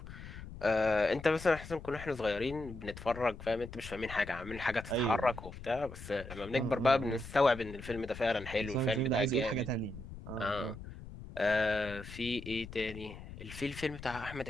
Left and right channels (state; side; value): noise; left; rumble, 13 dB below the sound